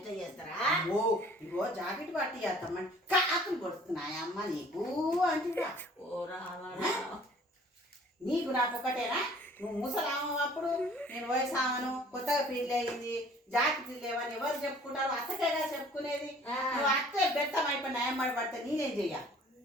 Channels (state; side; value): normal; both; correlation 0.53